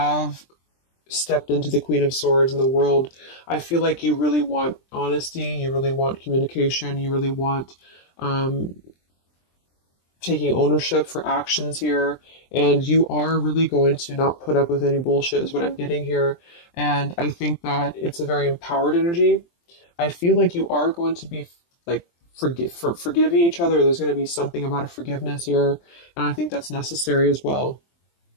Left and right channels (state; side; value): late; right; 23 ms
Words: stepped into the Queen of Swords in the world. I feel like you really want honesty, you really want communication, you really want taking ownership for actions here, and you are really going to not put up with any bullshit is what I'm getting here. And I think that it's a very empowered energy. I feel like you are going to be like forgiving each other. There's going to be something about a forgiveness here, and I think that's necessary as well.